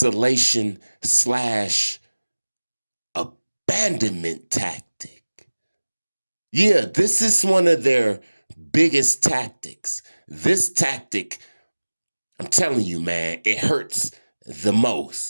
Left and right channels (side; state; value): both; inverted; correlation -1.00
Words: slash abandonment tactic. Yeah, this is one of their biggest tactics. This tactic, I'm telling you, man, it hurts the